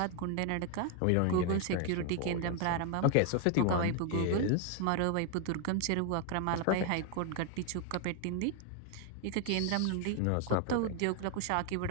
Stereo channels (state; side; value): different; both; correlation 0.01